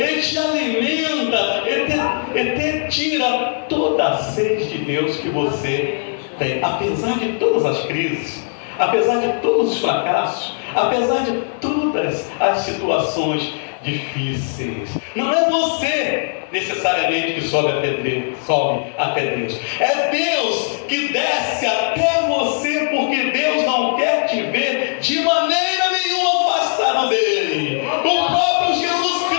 te alimenta, e te tira toda a sede de Deus que você tem. Apesar de todas as crises, apesar de todos os fracassos, apesar de todas as situações difíceis, não é você necessariamente que sobe até Deus. É Deus que desce até você, porque Deus não quer te ver de maneira nenhuma afastado dele. O próprio Jesus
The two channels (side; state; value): right; silent; digital silence